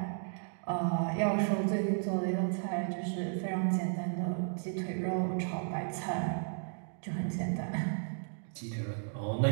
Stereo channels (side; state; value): left; silent; digital silence